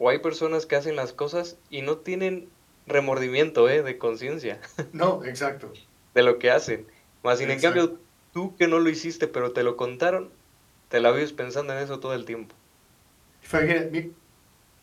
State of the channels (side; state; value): both; identical; correlation 1.00